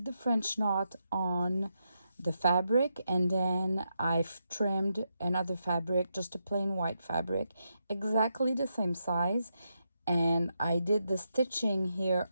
the French knot on the fabric, and then I've trimmed another fabric, just a plain white fabric, exactly the same size, and I did the stitching here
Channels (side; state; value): both; inverted; correlation -0.84